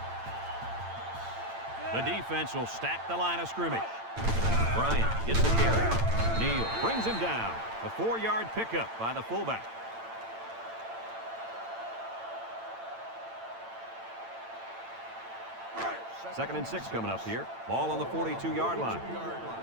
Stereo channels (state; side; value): late; left; 8.9 ms